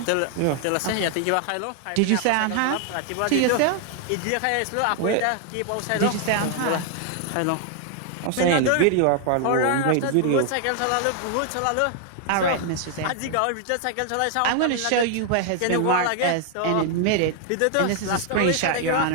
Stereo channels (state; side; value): different; both; correlation 0.00